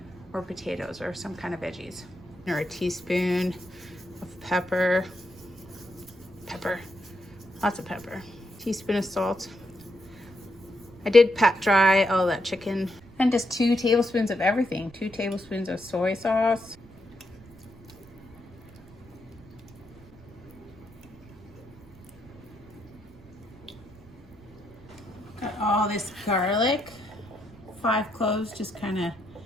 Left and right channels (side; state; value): right; noise; rumble, 22 dB below the sound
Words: or potatoes or some kind of veggies. Or a teaspoon of pepper, lots of pepper, teaspoon of salt. I did pat dry all that chicken, and just 2 tablespoons of everything. 2 tablespoons of soy sauce, got all this garlic, 5 cloves, just kind of